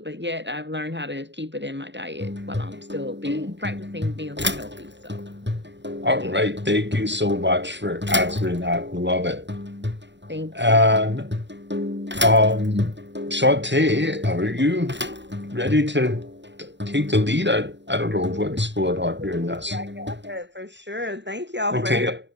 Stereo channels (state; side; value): late; left; 0.52 ms